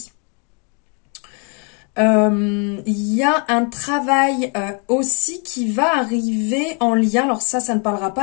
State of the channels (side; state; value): right; quieter; 36.7 dB